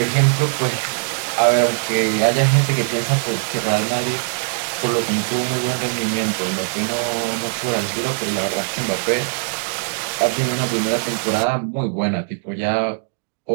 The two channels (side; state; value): left; silent; digital silence